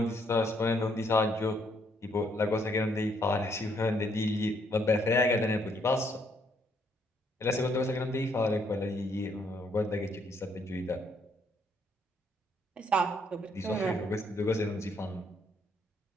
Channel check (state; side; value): normal; both; correlation 0.70